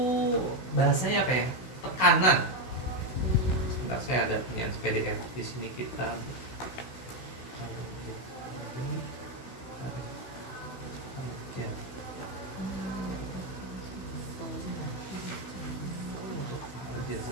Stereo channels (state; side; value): late; right; 16 ms